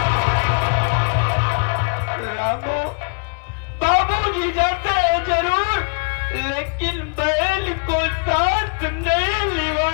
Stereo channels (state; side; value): quieter; right; 38.1 dB